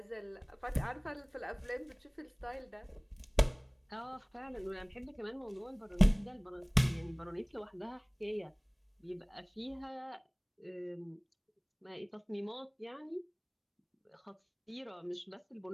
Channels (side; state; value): both; identical; correlation 1.00